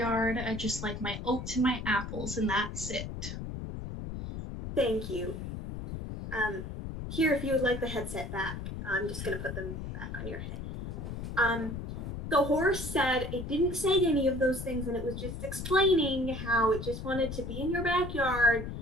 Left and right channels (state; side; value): noise; left; rumble, 7 dB below the sound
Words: I just like my oats and my apples, and that's it. Thank you. Here, if you would like the headset back, I'm just gonna put them back on your head. The horse said it didn't say any of those things, and it was just explaining how it just wanted to be in your backyard